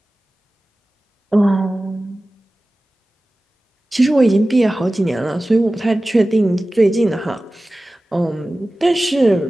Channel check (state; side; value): normal; both; correlation 0.96